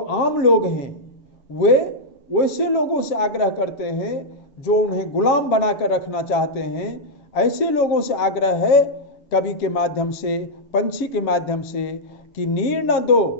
लोग हैं वे वैसे लोगों से आग्रह करते हैं जो उन्हें गुलाम बनाकर रखना चाहते हैं। ऐसे लोगों से आग्रह है कवि के माध्यम से, पंछी के माध्यम से, कि नीर न दो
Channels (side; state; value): right; late; 7.4 ms